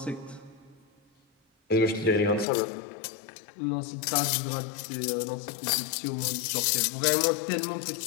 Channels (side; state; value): right; drops out; at 2.5 s